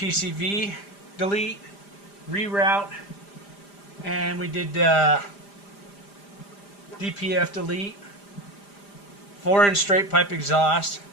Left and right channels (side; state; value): right; late; 5.0 ms